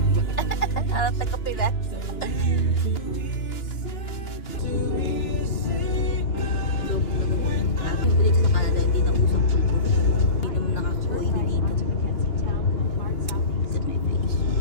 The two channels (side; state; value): right; late; 2.9 ms